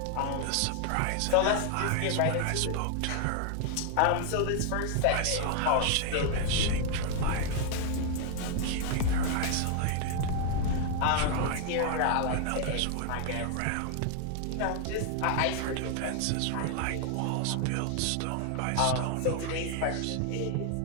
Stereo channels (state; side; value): different; both; correlation 0.00